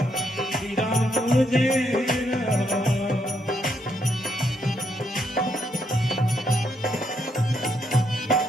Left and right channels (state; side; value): normal; both; correlation 0.76